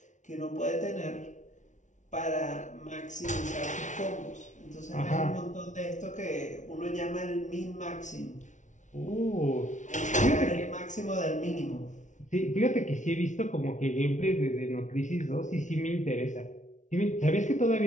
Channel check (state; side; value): late; right; 0.36 ms